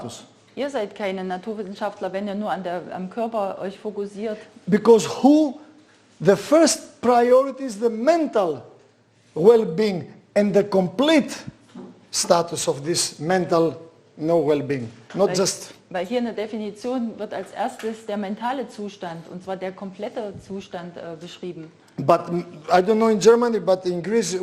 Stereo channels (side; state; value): both; identical; correlation 1.00